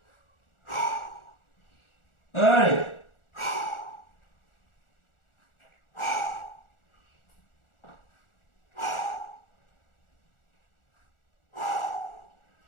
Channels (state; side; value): late; right; 1.4 ms